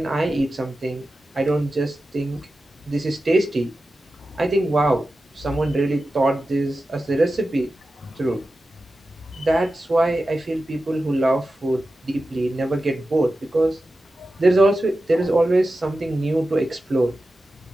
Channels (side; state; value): both; normal; correlation 0.93